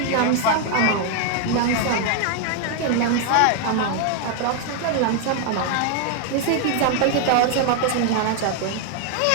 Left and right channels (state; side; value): different; both; correlation 0.01